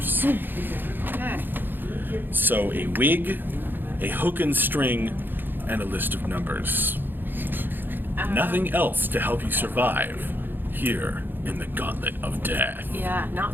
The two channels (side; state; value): left; late; 0.095 ms